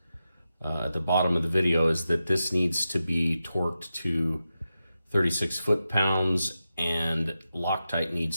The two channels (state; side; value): inverted; both; correlation -0.90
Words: at the bottom of the video, is that this needs to be torqued to 36 foot-pounds, and Loctite